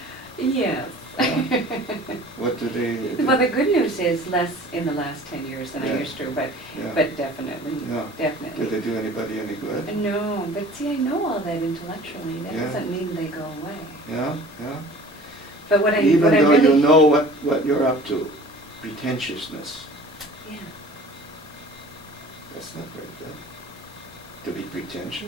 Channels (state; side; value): normal; both; correlation 0.45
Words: Yes. What do they do? Well, the good news is less in the last 10 years than I used to, but definitely, definitely. Do they do anybody any good? No, but see, I know all that intellectually. That doesn't mean they go away. Yeah. But what I Even what I though really, you know what you're up to, pretentiousness, yeah. that's not very good. To be